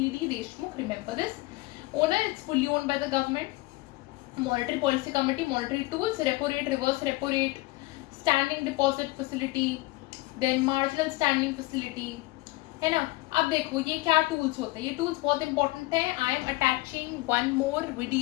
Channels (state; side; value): quieter; right; 20.8 dB